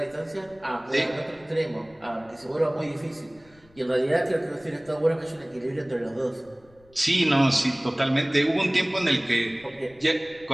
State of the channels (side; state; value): left; noise; rumble, 29 dB below the sound